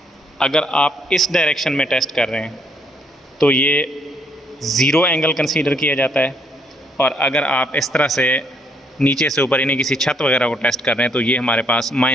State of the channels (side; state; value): both; normal; correlation 0.70